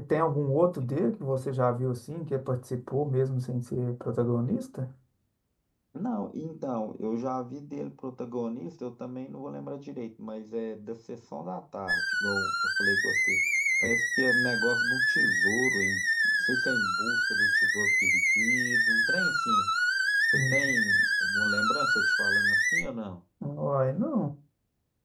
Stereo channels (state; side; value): identical; both; correlation 1.00